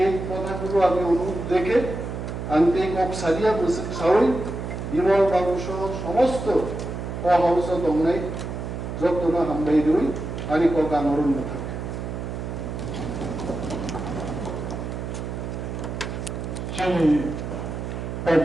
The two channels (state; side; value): noise; right; hum, 6 dB below the sound